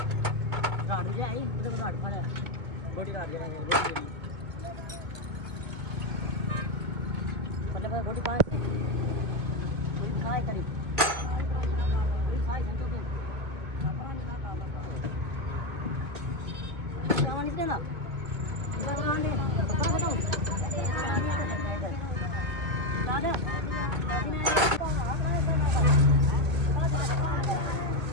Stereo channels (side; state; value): left; late; 2.2 ms